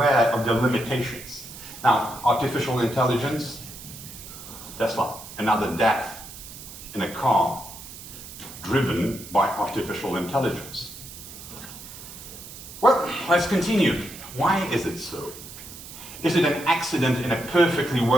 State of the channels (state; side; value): noise; right; hiss, 14 dB below the sound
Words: of their limitations. Now, artificial intelligence, Tesla, another death in a car driven by artificial intelligence. Well, let's continue. Why is it so? Is it an accident in a perfectly